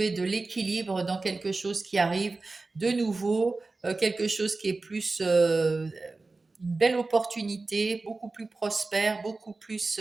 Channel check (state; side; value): quieter; left; 3.6 dB